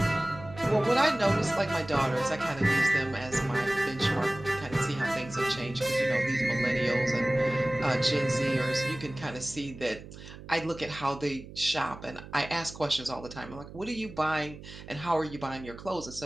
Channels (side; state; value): right; noise; hum, 15 dB below the sound